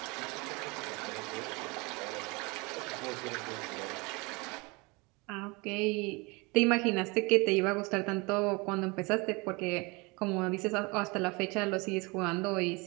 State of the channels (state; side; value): quieter; left; 27.2 dB